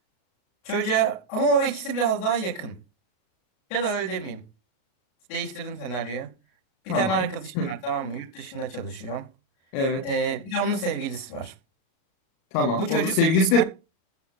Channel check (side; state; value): right; late; 36 ms